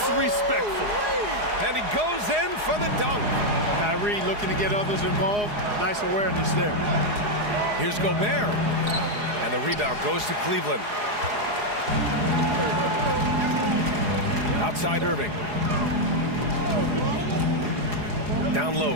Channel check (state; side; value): late; left; 4.8 ms